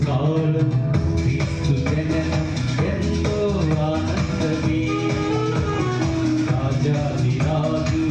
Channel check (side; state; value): both; identical; correlation 1.00